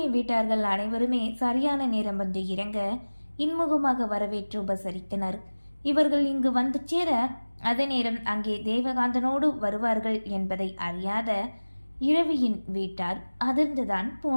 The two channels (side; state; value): both; inverted; correlation -1.00